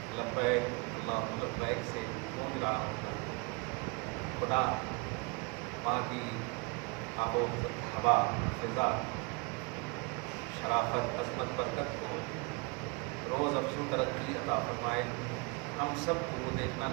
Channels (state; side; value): quieter; left; 30.1 dB